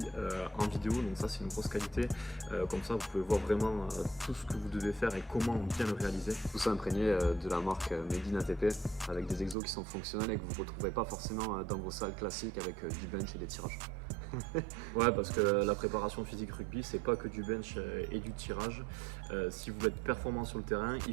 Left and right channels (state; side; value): drops out; left; at 9.6 s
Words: en vidéo, donc ça c'est une grosse qualité. Comme ça vous pouvez voir vraiment tout ce que vous devez faire et comment bien le réaliser. Tout ça imprégné de la marque Made in ATP avec des exos qui sont fonctionnels et que vous ne retrouverez pas forcément dans vos salles classiques avec du bench et des tirages. Ouais, parce que la préparation physique rugby, c'est pas que du bench et du tirage. Si vous voulez être performant sur le terrain,